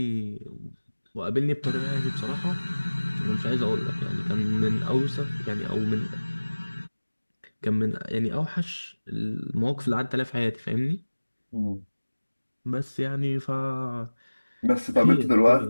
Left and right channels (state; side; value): inverted; both; correlation -1.00